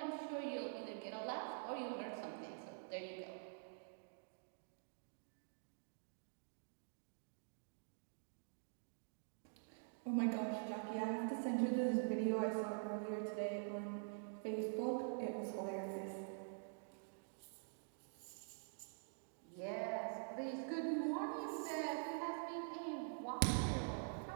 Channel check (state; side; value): silent; left; digital silence